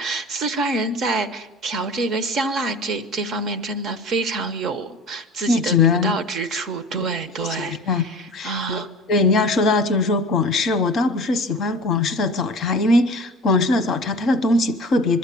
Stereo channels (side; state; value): both; normal; correlation 0.38